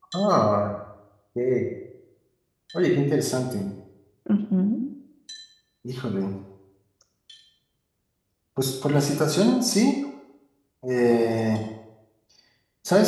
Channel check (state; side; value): identical; both; correlation 1.00